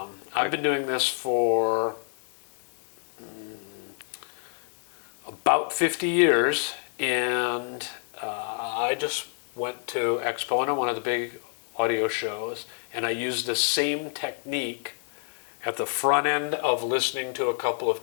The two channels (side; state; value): right; silent; 59 dB below the other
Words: been doing this for about 50 years, and I just went to Expo, one of the big audio shows, and I used the same technique at the front end of listening to a couple of